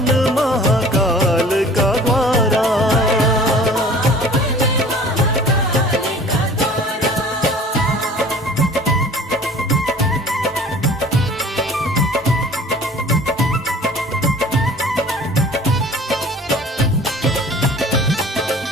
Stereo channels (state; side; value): normal; both; correlation 0.47